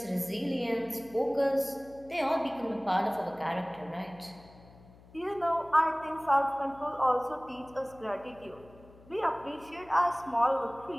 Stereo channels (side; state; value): left; noise; hum, 23 dB below the sound